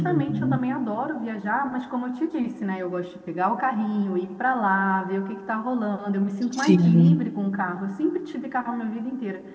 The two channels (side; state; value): both; identical; correlation 1.00